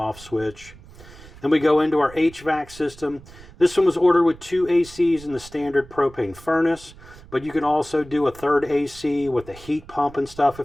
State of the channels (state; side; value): noise; right; rumble, 20 dB below the sound